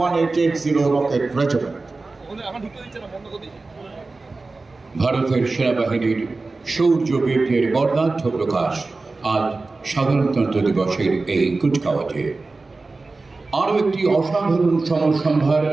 1880 rocket regiment. ভারতের সেনাবাহিনীর শৌর্য বীর্যের বর্ণাঢ্য প্রকাশ আজ সাধারণতন্ত্র দিবসের এই কুচকাওয়াজে। আরও একটি অসাধারণ সমরসম্ভার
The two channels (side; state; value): left; quieter; 3.6 dB